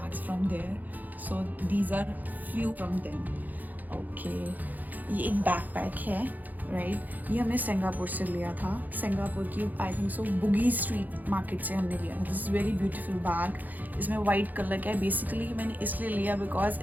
from there. So these are few from them. Okay. ये एक backpack है. राइट ये हमने सिंगापुर से लिया था. सिंगापुर की आई थिंक सो बुगी स्ट्रीट मार्केट से हमने लिया था. This is very beautiful bag. इसमें वाइट कलर का है. बेसिकली मैंने इसलिए लिया बिकॉज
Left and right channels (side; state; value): left; late; 0.083 ms